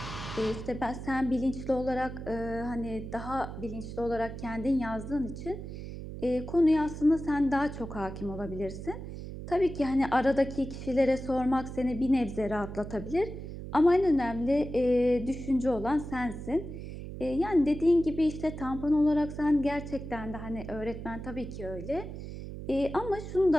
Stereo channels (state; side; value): noise; right; hum, 9 dB below the sound